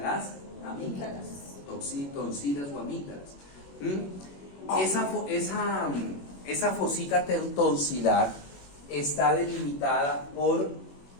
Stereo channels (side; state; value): right; late; 21 ms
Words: amígdalas, tonsilas o amígdalas. Esa fosita tonsilar está delimitada por